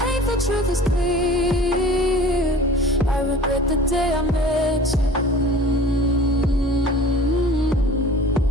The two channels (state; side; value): normal; both; correlation 0.43